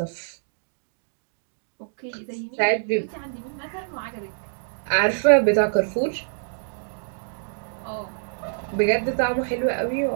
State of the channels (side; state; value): left; silent; digital silence